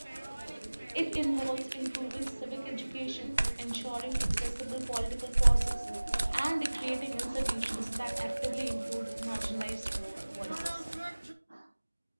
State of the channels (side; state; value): both; inverted; correlation -1.00